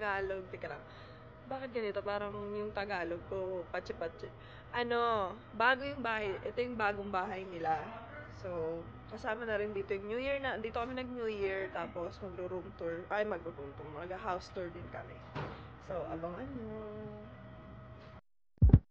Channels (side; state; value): both; identical; correlation 1.00